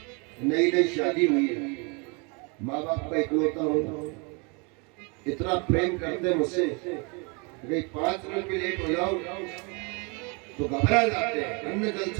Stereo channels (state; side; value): quieter; left; 32.2 dB